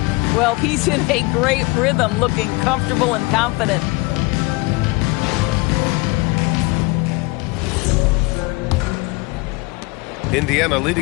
Well, he's in a great rhythm, looking comfortable and confident. Indiana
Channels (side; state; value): right; quieter; 24.6 dB